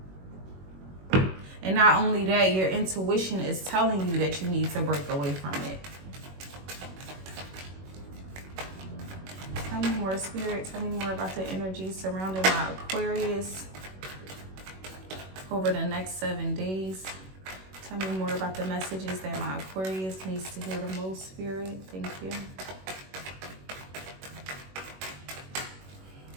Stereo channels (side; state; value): left; late; 21 ms